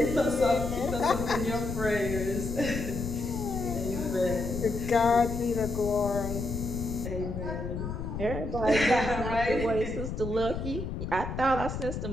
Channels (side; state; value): left; noise; rumble, 5 dB below the sound